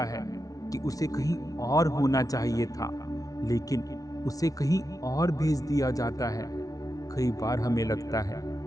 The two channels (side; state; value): right; late; 0.18 ms